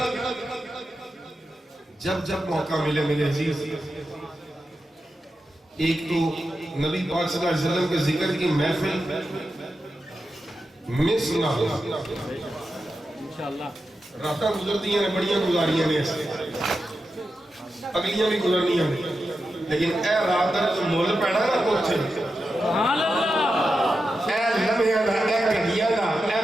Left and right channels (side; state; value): both; normal; correlation 0.89